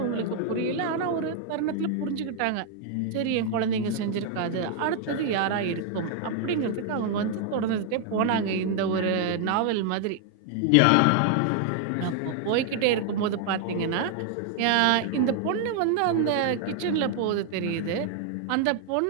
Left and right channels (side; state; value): both; different; correlation 0.00